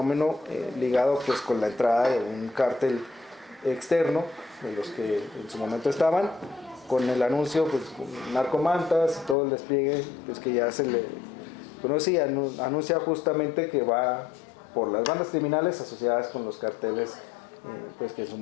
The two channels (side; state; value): right; drops out; at 9.3 s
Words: ligado pues con la entrada de un cártel externo, de los que en su momento estaban, con el anuncio pues narcomantas y todo el despliegue pues que ya se le conoce, anuncia justamente que va por las bandas criminales asociadas con los carteles pues que en su